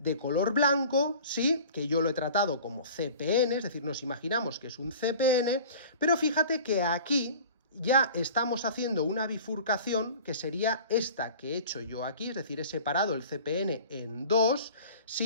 color blanco, sí, que yo lo he tratado como CPN, es decir, nos imaginamos que es un CPN, pero fíjate que aquí ya estamos haciendo una bifurcación que sería esta que he hecho yo aquí, es decir, he separado el CPN en dos,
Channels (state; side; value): inverted; both; correlation -0.42